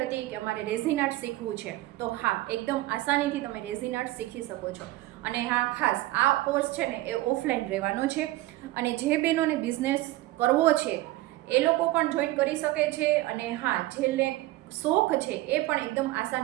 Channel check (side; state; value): left; quieter; 17.7 dB